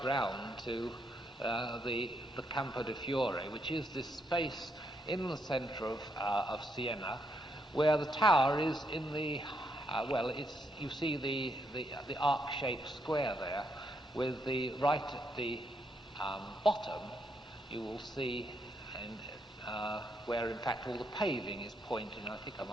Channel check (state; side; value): normal; both; correlation 0.77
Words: round to the Campo de Fiore, which is this space in the centre of Siena, where the tower is in the you see the arc-shaped square there, with the right at the bottom, you will see where in fact all the paving is pointing. I think I